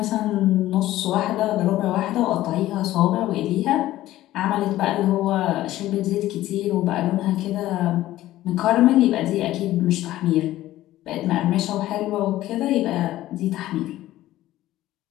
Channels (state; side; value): quieter; right; 15.0 dB